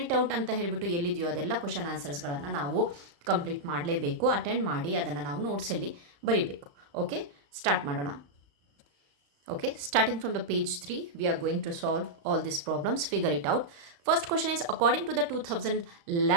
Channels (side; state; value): left; late; 35 ms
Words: ಇಟ್ ಔಟ್ ಅಂತ ಹೇಳಿಬಿಟ್ಟು ಎಲ್ಲಿದೆಯೋ ಅದೆಲ್ಲ ಕ್ವಶನ್ ಆನ್ಸರ್ಸ್ಗಳನ್ನು ನಾವು ಕಂಪ್ಲೀಟ್ ಮಾಡಲೇಬೇಕು. ಅಟೆಂಡ್ ಮಾಡಿ ಅದನ್ನು ನಾವು ನೋಟ್ಸಲ್ಲಿ ಬರೀಬೇಕು. ಓಕೆ, ಸ್ಟಾರ್ಟ್ ಮಾಡೋಣ. Okay, starting from the page 3, we are going to solve all these problems. Figure it out. First question is, according to the